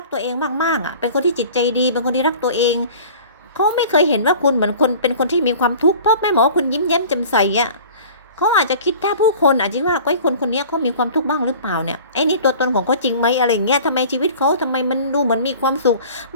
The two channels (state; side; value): inverted; both; correlation -0.44